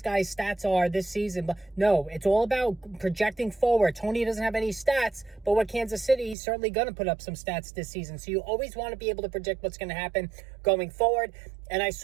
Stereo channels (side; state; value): left; drops out; at 6.4 s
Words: guy's stats are this season. But no, it's all about projecting forward. Toney doesn't have any stats, but with Kansas City, he's certainly going to put up some stats this season. So you always want to be able to predict what's going to happen going forward. And I